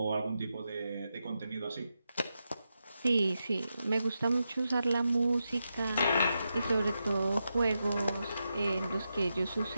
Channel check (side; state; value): both; inverted; correlation -0.87